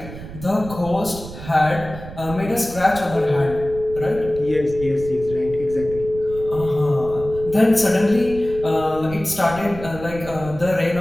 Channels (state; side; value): noise; right; rumble, 13 dB below the sound